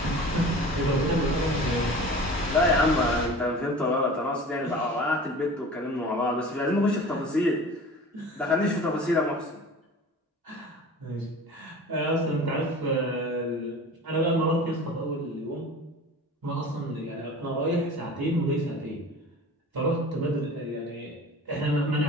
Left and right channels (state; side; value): normal; both; correlation 0.39